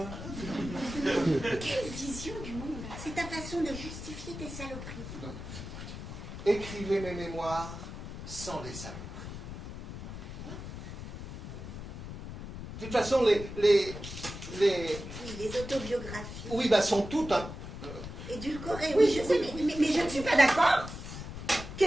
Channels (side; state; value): left; noise; rumble, 9 dB below the sound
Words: Quelle vision du monde. C'est ta façon de justifier tes saloperies. Non. Écrivez mes mémoires sans les saloperies. De toute façon, les Oui, les autobiographies. oui, sont toutes un... Édulcorées, oui, je sais, mais je ne suis pas d'accord.